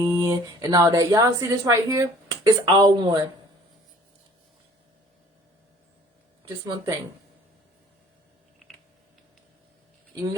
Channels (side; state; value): both; normal; correlation 0.53